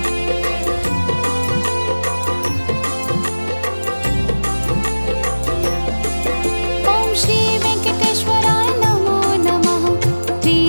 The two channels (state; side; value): inverted; both; correlation -1.00